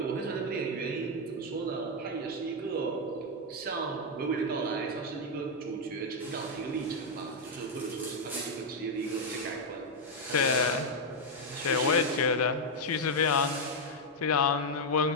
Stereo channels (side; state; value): both; normal; correlation 0.00